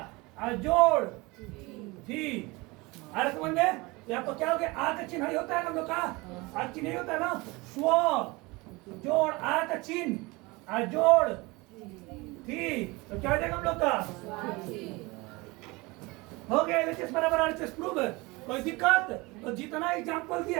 जोड़ थी। अरे समझ में, यहाँ पर क्या हो गया आ का चिन्ह होता है ना हम लोग का, आ चिन्ह नहीं होता है ना। स्व जोड़ आ का चिन्ह आ जोड़ थी, तो क्या हो जाएगा हम लोग का हो गया LHS बराबर RHS प्रूफ। कोई दिक्कत? तो जितना एग्जाम्पल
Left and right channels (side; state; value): left; quieter; 24.1 dB